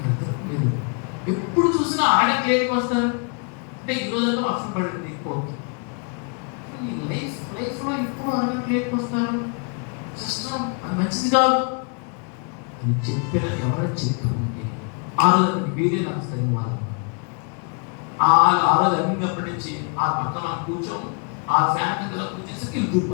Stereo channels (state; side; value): quieter; right; 39.3 dB